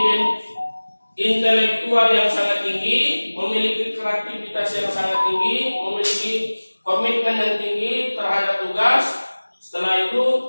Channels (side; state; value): both; inverted; correlation -1.00